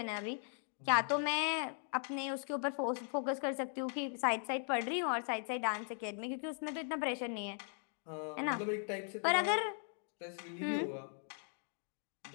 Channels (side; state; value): right; silent; 52 dB below the other